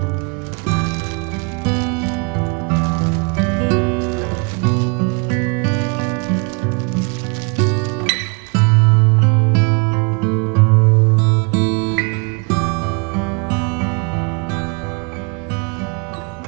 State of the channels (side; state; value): left; quieter; 34.3 dB